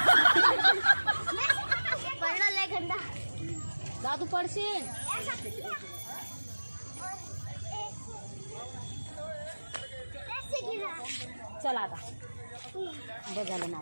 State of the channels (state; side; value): inverted; both; correlation -1.00